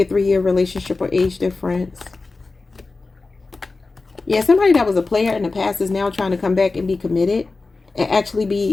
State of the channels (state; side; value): quieter; right; 3.7 dB